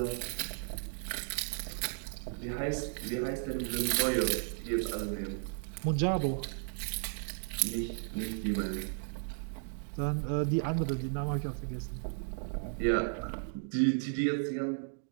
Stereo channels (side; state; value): left; silent; digital silence